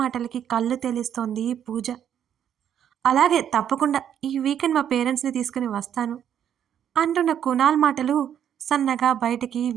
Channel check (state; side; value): quieter; left; 9.5 dB